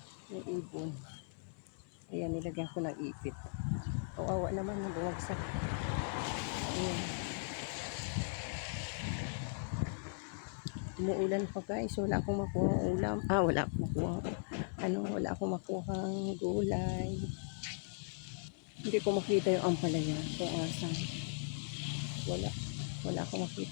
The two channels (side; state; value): right; silent; 52 dB below the other